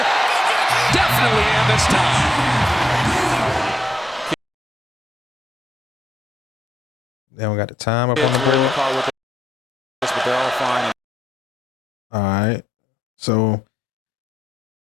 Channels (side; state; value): both; normal; correlation 0.81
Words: Definitely in this time. Then we got the time up on the board. But they're all fine. All right. So